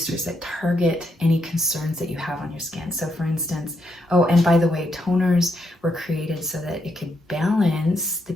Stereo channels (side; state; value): both; normal; correlation 0.79